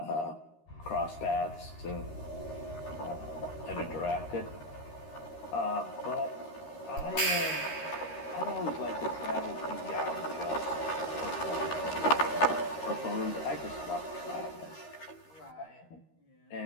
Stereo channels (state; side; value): late; right; 13 ms